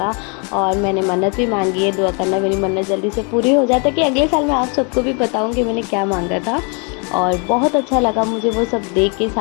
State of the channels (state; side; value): quieter; right; 35.6 dB